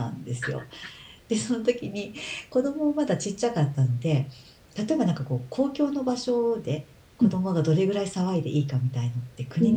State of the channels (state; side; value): identical; both; correlation 1.00